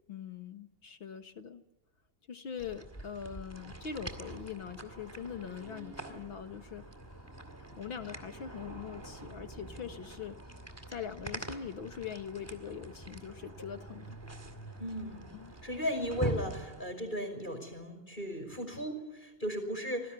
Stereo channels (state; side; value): late; right; 2.8 ms